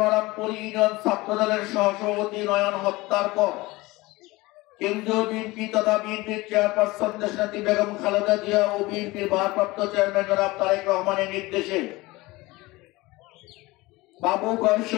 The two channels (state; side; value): quieter; right; 21.1 dB